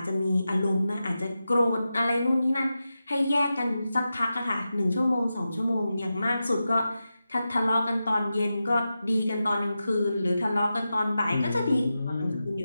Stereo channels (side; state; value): both; inverted; correlation -0.91